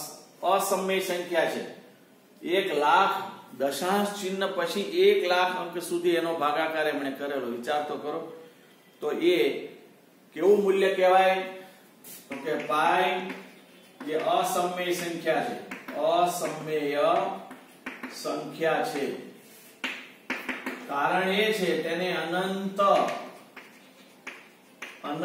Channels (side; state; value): both; identical; correlation 1.00